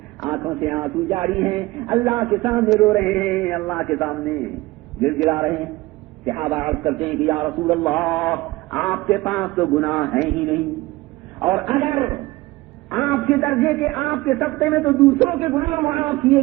آنکھوں سے آنسو جاری ہیں، اللہ کے سامنے رو رہے ہیں، اللہ کے سامنے گر گرا رہے ہیں۔ صحابہ عرض کرتے ہیں کہ یا رسول اللہ آپ کے پاس تو گناہ ہیں ہی نہیں، اور اگر آپ کے درجے کے، آپ کے سطح میں تو دوسروں کے گناہ معاف کیے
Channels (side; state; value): left; quieter; 20.2 dB